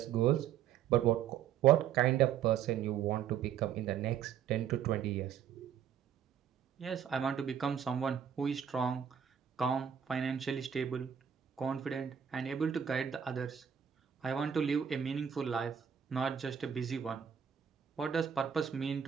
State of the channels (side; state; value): left; quieter; 8.6 dB